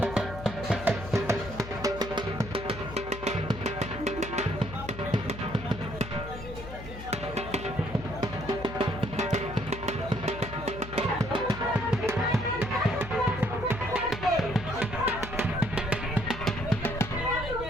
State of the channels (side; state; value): left; noise; hum, 11 dB below the sound